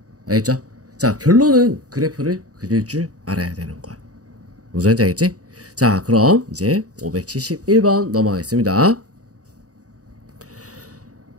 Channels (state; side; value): late; left; 0.66 ms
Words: 알겠죠? 자, 결론은 그래프를 그릴 줄 알아야 되는 거야. 무슨 말인지 알겠지? 자, 그럼 이제 571번 넘어가겠습니다.